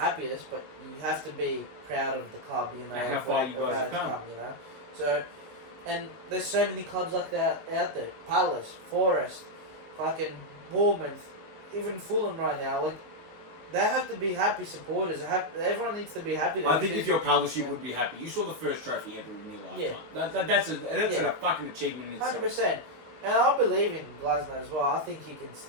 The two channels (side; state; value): left; late; 19 ms